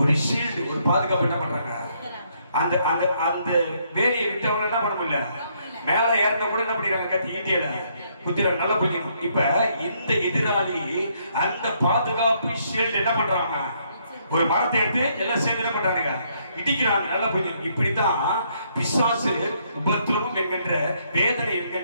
ஷீல்டு, ஒரு பாதுகாப்பு என்ன பண்றாங்க? அந்த அந்த அந்த வேலையை விட்டவங்க என்ன பண்ண முடியல, மேல ஏறின கூட என்ன பண்ணிடுறாங்க? கத்தி ஈட்டியில குத்திர நல்லா புரிஞ்சுக்கணும். இப்ப இந்த எதிராளி அந்த பாதுகாப்பு ஷீல்டு என்ன பண்றாங்க? ஒரு மரத்தை எடுத்து எல்லாம் சேர்ந்து என்ன பண்றாங்க? இடிக்கிறாங்க. நல்லா புரியும். இப்படித்தான் பிசாசு உபத்திரவம் என்கின்ற, வேதனை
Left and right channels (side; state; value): both; inverted; correlation -0.71